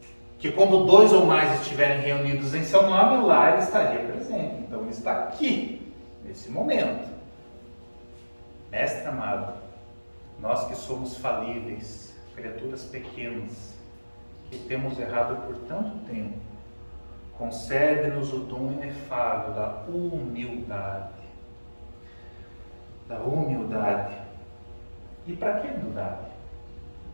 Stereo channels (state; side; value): inverted; both; correlation -1.00